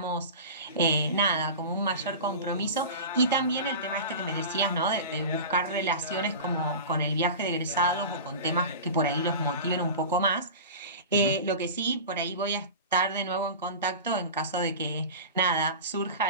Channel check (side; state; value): both; inverted; correlation -0.31